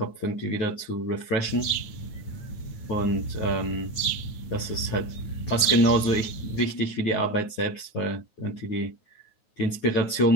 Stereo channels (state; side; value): late; right; 9.4 ms